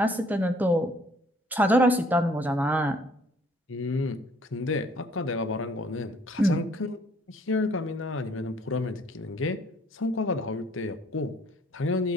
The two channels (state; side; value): normal; both; correlation 0.60